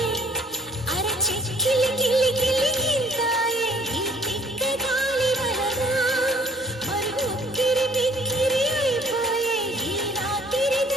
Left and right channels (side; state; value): both; normal; correlation 0.56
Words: అరే చిక్కిలి గిల్లి గిల్లి గింతాయి ఈ తిక్క గాలి వలన మరి ఉక్కిరి బిక్కిరి అయిపోయే ఈ రాత్రి